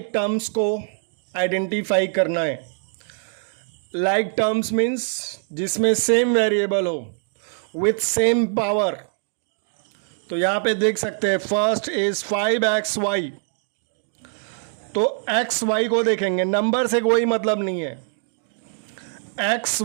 terms को identify करना है। Like terms means जिसमें same variable हो with same power। तो यहाँ पे देख सकते हैं फर्स्ट इज 5xy, तो xy को देखेंगे, नंबर से कोई मतलब नहीं है। एक्स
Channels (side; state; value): left; silent; digital silence